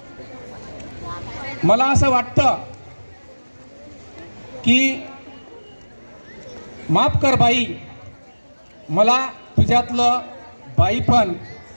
मला असं वाटतं की माफ कर बाई मला तुझ्यातलं बाईपण,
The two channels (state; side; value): inverted; both; correlation -1.00